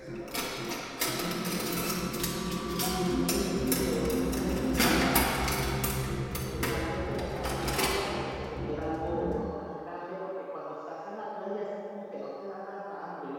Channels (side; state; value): both; identical; correlation 1.00